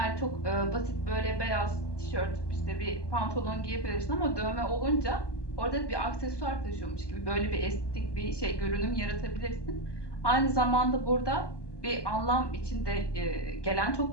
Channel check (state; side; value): late; right; 1.2 ms